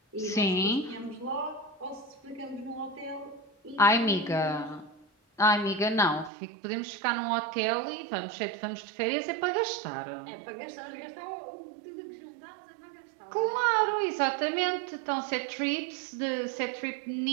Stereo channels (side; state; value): left; drops out; at 6.3 s